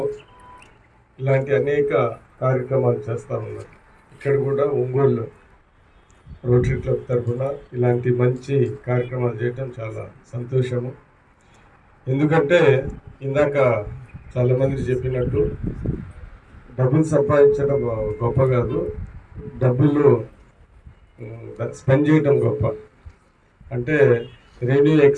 ఇలాంటి అనేక కార్యక్రమాలు చేస్తూ ఉన్నారు. ఇక్కడ కూడా ఒంగోలు రోటరీ క్లబ్ తరఫున ఇలాంటి మంచి కార్యక్రమాలు చేయటం చాలా సంతోషము. ఎందుకంటే ఇందాక చాలామంది చెప్పినట్టు డబ్బులు సంపాదించడం గొప్ప కాదు, డబ్బులు స్పెండ్ చేయడం గొప్ప. అంటే రెవెన్యూ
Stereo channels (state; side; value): identical; both; correlation 1.00